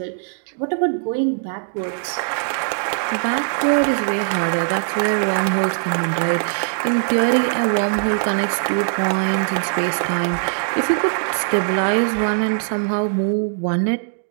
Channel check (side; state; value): left; silent; digital silence